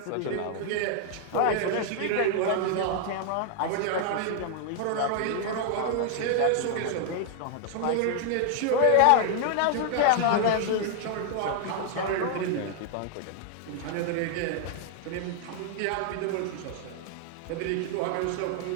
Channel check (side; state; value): both; different; correlation 0.00